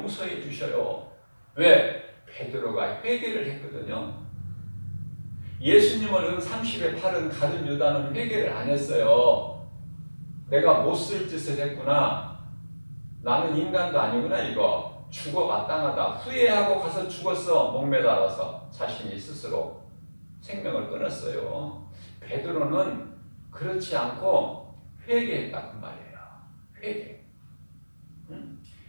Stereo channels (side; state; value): both; inverted; correlation -1.00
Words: 주셔요. 왜? 베드로가 회개를 했거든요. 예수님을 은 30에 팔은 가룟 유다는 회개를 안 했어요. 내가 못 쓸 짓을 했구나. 나는 인간도 아니구나 이거. 죽어 마땅하다. 후회하고 가서 죽었어. 목매달아서 자신이 스스로 생명을 끊었어요. 베드로는 그렇지 않고 회개했다고 말이에요. 회개. 응?